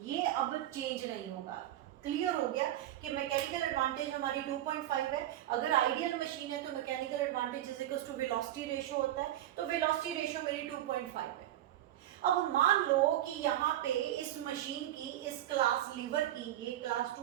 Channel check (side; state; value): left; quieter; 13.1 dB